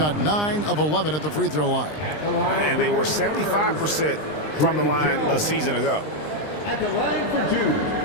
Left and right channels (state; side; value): late; right; 20 ms